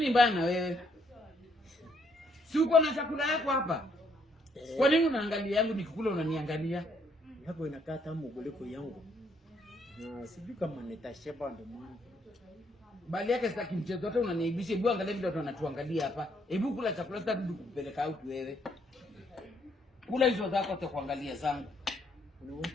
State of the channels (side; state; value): both; normal; correlation 0.71